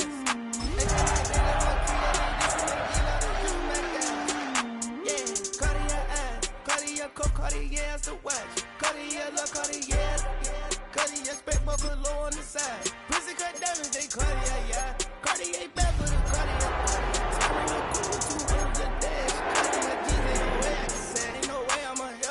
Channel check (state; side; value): identical; both; correlation 1.00